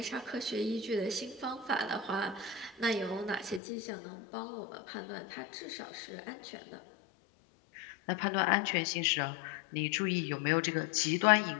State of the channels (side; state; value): right; drops out; at 3.6 s